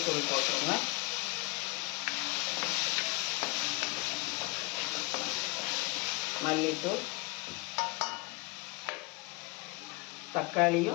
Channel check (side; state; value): right; quieter; 24.2 dB